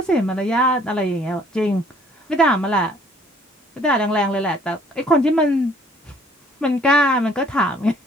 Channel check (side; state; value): both; normal; correlation 0.59